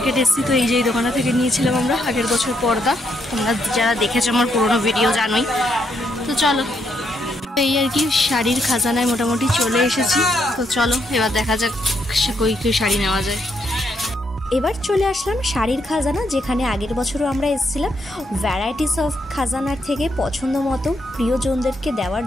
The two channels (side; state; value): both; normal; correlation 0.76